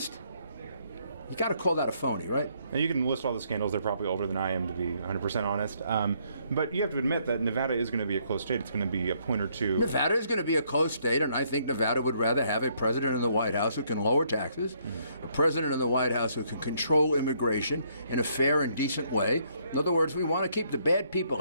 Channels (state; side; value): inverted; both; correlation -0.69